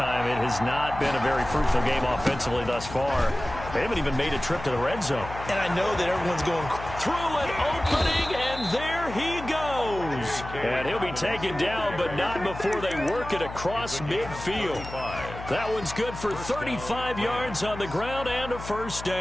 It has not been a very fruitful game offensively thus far. They haven't even made a trip to the red zone. And I know that everyone's going through an opening, and there he goes. And he'll be taken down, but not before they work it across midfield. That one's good for 35 yards on the ground and a first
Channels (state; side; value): noise; left; hum, 11 dB below the sound